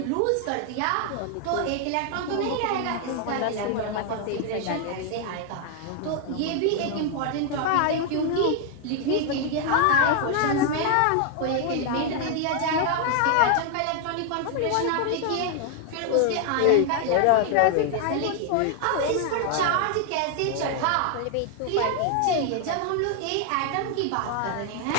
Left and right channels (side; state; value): both; different; correlation 0.00